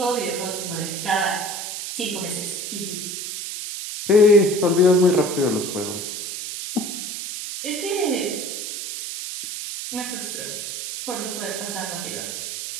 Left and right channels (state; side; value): noise; right; hiss, 6 dB below the sound